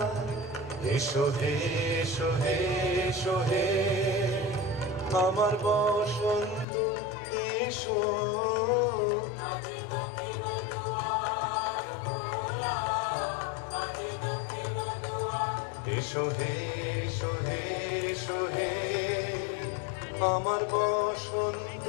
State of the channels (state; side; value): drops out; right; at 6.7 s